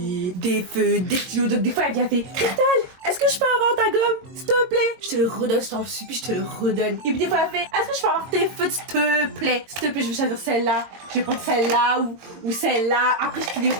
des feux, des stylos. Donc des fois elle vient faire Cristal, est-ce que je peux avoir ta gomme, s'il te plaît? Je te le redonne, je t'en supplie, je te le redonne. Et puis des fois elle fait, est-ce que je peux avoir tes feux, s'il te plaît? S'il te plaît, je vais choisir celle-là, je vais prendre celle-là ou celle-là. Après je te les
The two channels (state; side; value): late; left; 22 ms